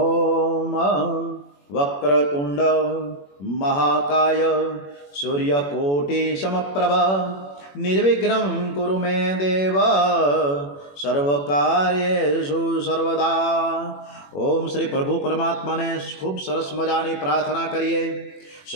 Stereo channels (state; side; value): late; right; 21 ms